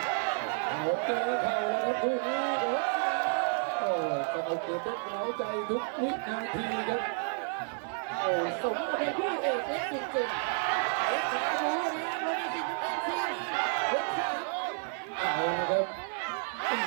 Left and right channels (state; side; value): silent; left; 57 dB below the other